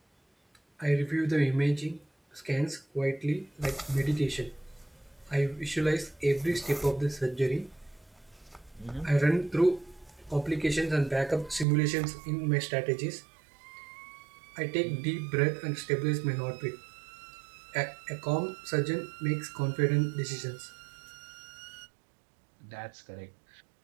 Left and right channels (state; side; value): drops out; left; at 11.7 s